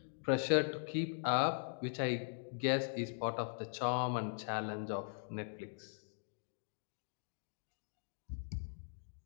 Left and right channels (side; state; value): right; silent; digital silence